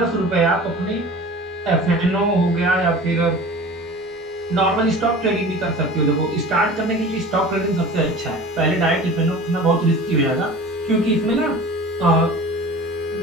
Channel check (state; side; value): normal; both; correlation 0.39